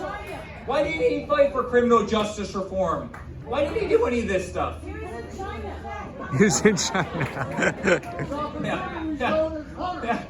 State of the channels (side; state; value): both; identical; correlation 1.00